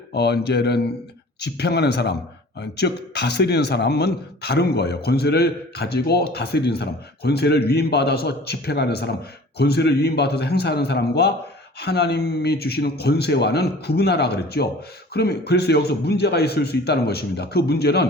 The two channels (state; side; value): normal; both; correlation 0.45